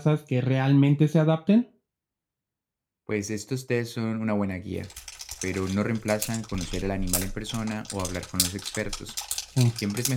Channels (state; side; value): identical; both; correlation 1.00